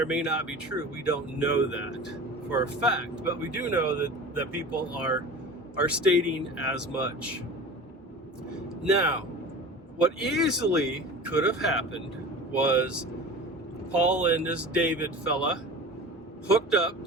may not be true. We don't know that for a fact, but we do know that people are stating as much. Now, what easily could have happened was Paul and this David fella hooked up,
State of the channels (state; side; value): normal; both; correlation 0.36